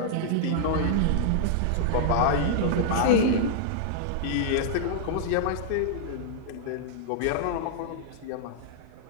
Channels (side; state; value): both; different; correlation -0.01